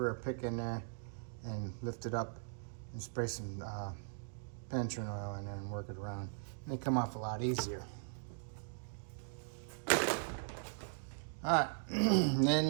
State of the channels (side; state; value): left; silent; digital silence